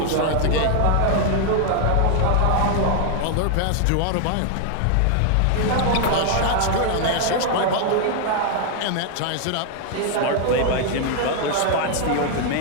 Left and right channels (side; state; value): both; different; correlation 0.00